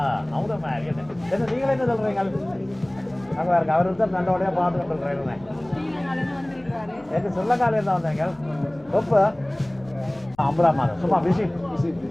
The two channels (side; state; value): left; noise; hum, 29 dB below the sound